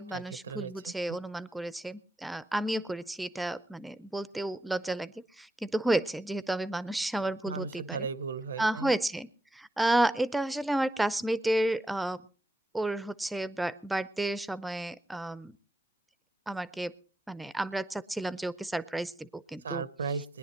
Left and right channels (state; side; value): normal; both; correlation 0.85